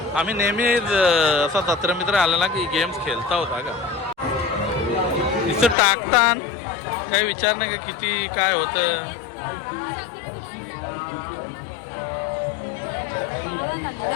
आम्ही नेहमी असा जत्र मित्र आला ना की गेम्स खेळता होता का. इथं टाकतान काही विचार नाही का किती काय होतं.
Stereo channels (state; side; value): drops out; right; at 5.8 s